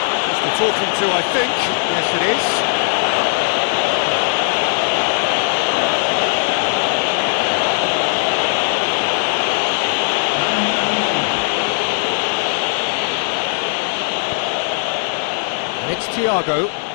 Just the talking to, I think. Yes, it is. It's Thiago.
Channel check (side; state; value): right; silent; 56 dB below the other